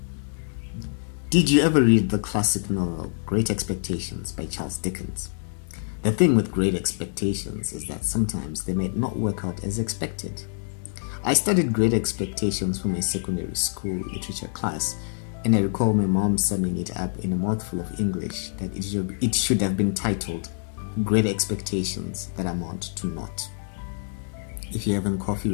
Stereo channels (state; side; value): silent; right; 61 dB below the other